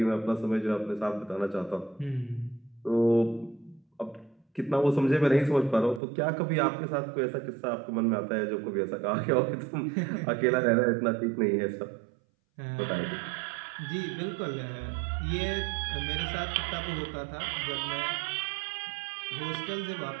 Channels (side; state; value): left; drops out; at 6.0 s